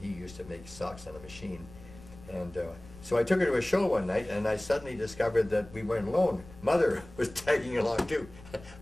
he used to make socks on a machine. And so I took her to a show one night, and I suddenly discovered that we weren't alone. Mother was tagging along too.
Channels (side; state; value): left; noise; rumble, 19 dB below the sound